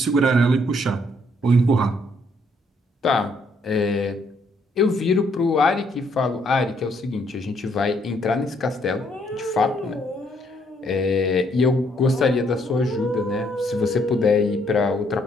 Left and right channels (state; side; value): normal; both; correlation 0.69